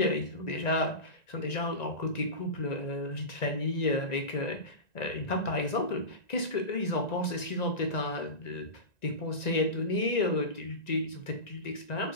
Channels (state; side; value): late; right; 1.9 ms